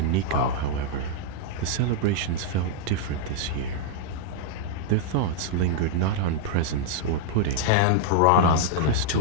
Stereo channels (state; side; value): different; both; correlation -0.01